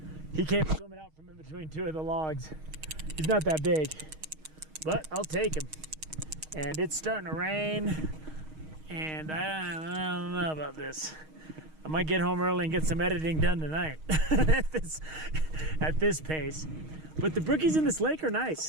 he came swimming out from in between two of the logs. He's not that big, but I'll take him. And it's starting to rain. And I don't know about this. I might get home early and get some editing done tonight at this pace. But the brookies in this lake are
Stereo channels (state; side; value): late; left; 6.4 ms